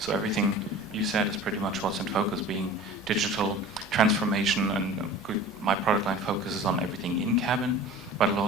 everything you said is pretty much what's in focus, being digital transformation, and my product line focuses on everything in cabin, but a lot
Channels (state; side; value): normal; both; correlation 0.40